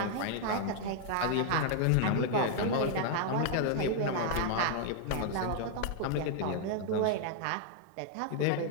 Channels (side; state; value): both; different; correlation -0.01